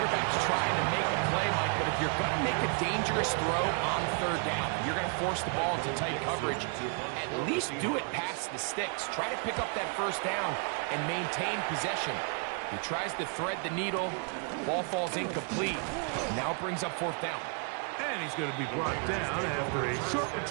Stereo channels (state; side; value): quieter; left; 39.4 dB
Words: trying to make a play, Mike, but if you're going to make a dangerous throw on 3rd down, you're going to force the ball into tight coverage, at least do it past the sticks. Try to pick up that 1st down and maintain possession. He tries to thread the needle. Ball falls incomplete. Now brings up 4th down. And he's going to be brought down after a short